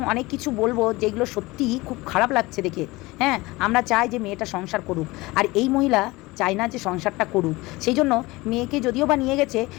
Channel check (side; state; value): right; quieter; 21.4 dB